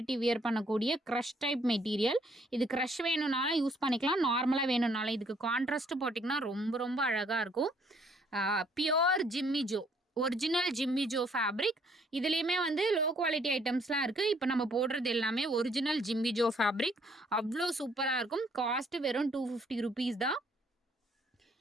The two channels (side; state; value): both; normal; correlation 0.65